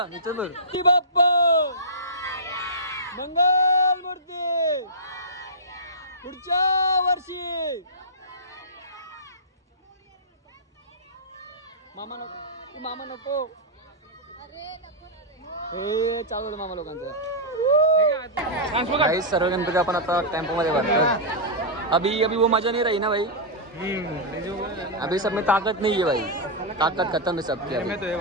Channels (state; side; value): normal; both; correlation -0.14